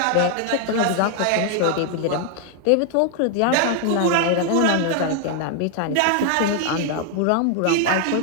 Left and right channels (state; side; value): different; both; correlation 0.00